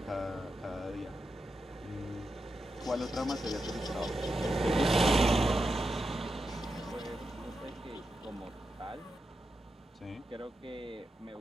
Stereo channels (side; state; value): both; normal; correlation 0.88